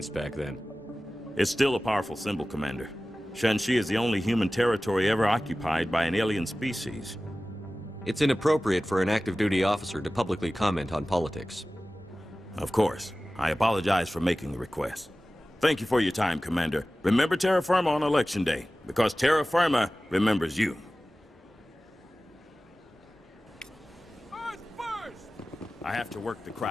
back then. It's still a powerful symbol, Commander. Shanxi is the only human territory ever occupied by an alien species. It's inappropriate for an active duty officer to publicly comment on politics. Of course. I apologize for making the request. Thank you for your time, Commander. Remember Terra Firma on Election Day, because Terra Firma remembers you. I have to work the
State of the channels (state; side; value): normal; both; correlation 0.96